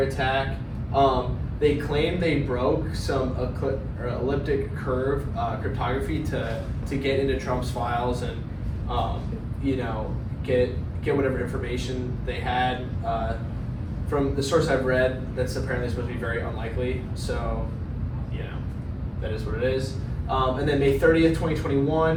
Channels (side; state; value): both; identical; correlation 1.00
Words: attack. They claimed they broke some elliptic curve cryptography to get into Trump's files and get whatever information they had. From the source I've read, that's apparently supposed to be very unlikely. So that is what it is. And then May 30th,